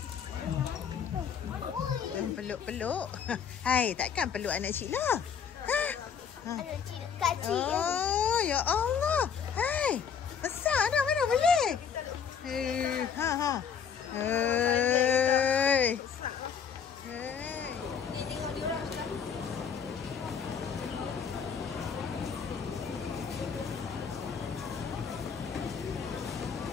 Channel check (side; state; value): right; quieter; 7.1 dB